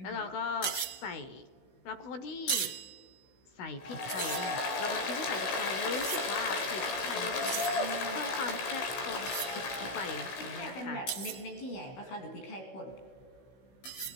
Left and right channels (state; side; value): late; right; 16 ms